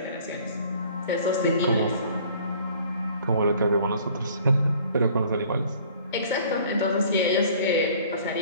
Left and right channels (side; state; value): both; inverted; correlation -0.53